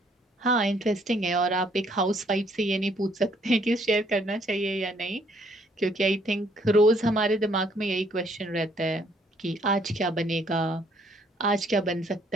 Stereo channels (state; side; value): normal; both; correlation 0.65